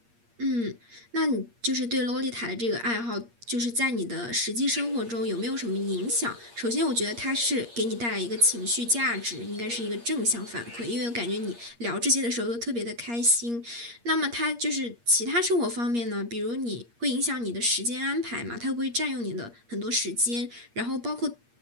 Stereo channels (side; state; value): left; late; 8.5 ms